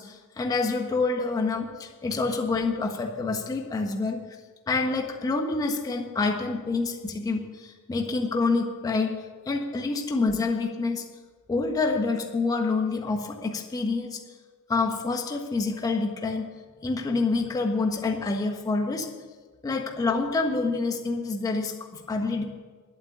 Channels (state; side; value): quieter; right; 3.3 dB